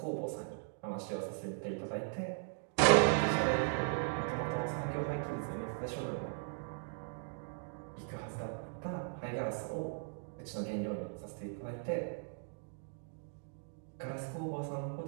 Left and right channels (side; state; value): left; silent; digital silence